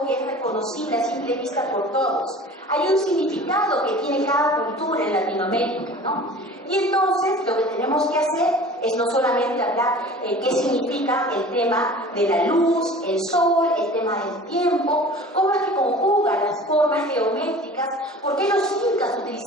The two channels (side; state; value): both; normal; correlation 0.42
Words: que es reconocible a simple vista por todos, hay un significado que tiene cada cultura en Latinoamérica, ¿no? Y entonces lo que tenemos que hacer es no solamente hablar qué significa el tema de la luz, el sol, el tema del tiempo, cómo es que conjugan las formas geométricas, por qué los incas